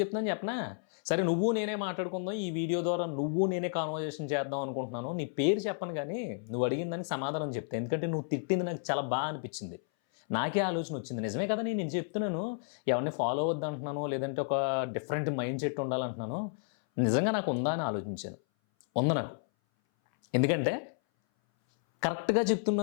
చెప్పనా? సరే, నువ్వు నేనే మాట్లాడుకుందాం, ఈ వీడియో ద్వారా నువ్వు నేనే కాన్వర్జేషన్ చేద్దాం అనుకుంటున్నాను. నీ పేరు చెప్పను, కానీ నువ్వు అడిగిన దానికి సమాధానం చెప్తే, ఎందుకంటే నువ్వు తిట్టింది నాకు చాలా బాగా అనిపించింది. నాకే ఆలోచన వచ్చింది, నిజమే కదా, నేను చెప్తున్నాను ఎవరిని ఫాలో అవ్వద్దు అంటున్నాను, లేదంటే ఒక డిఫరెంట్ మైండ్ సెట్ ఉండాలంటున్నాను. నిజంగా నాకు ఉందా అని ఆలోచించాను. ఉంది నాకు. ఎందుకంటే కరెక్ట్గా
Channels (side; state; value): right; silent; 57 dB below the other